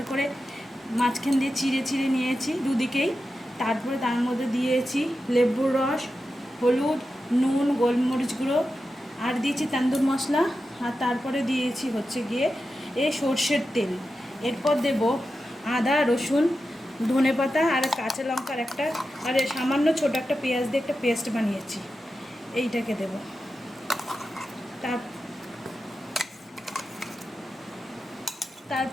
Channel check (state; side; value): normal; both; correlation 0.91